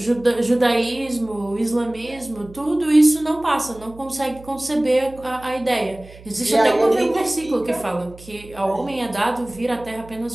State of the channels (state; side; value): noise; right; hum, 20 dB below the sound